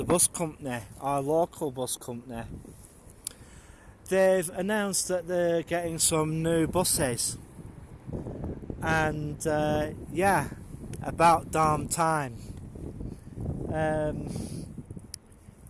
bus company, our local bus company, they've announced that they're getting some new buses, and about damn time.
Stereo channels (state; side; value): identical; both; correlation 1.00